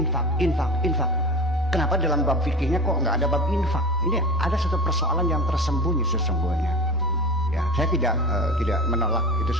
Kenapa dalam bab fikihnya kok nggak ada bab infak? Ini ada satu persoalan yang tersembunyi sesungguhnya. Ya, saya tidak menolak itu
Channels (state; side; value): normal; both; correlation 0.31